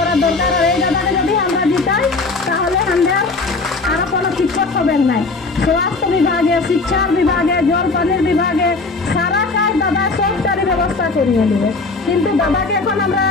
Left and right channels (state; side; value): quieter; right; 3.7 dB